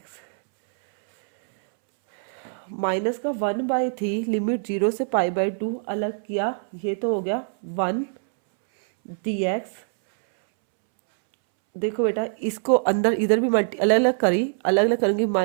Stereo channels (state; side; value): silent; left; 63 dB below the other